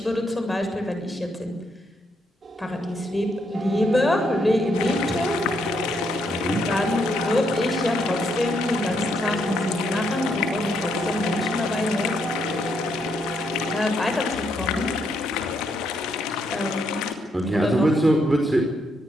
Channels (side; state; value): both; normal; correlation 0.76